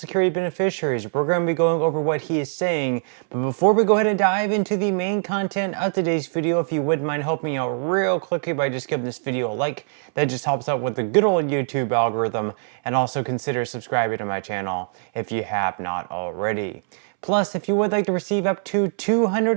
beneficiaries. We're going to be going over what he is saying. But before we go ahead and dive into the main content of today's video, if you wouldn't mind helping me out real quickly by just giving this video a like, that just helps out with the good old YouTube algorithm. And also consider subscribing to my channel if you have not already. Plus, if you would like to receive up to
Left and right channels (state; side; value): silent; left; 64 dB below the other